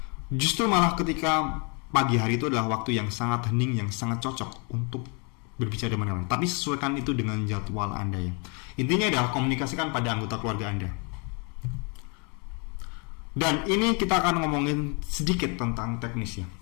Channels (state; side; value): quieter; right; 34.2 dB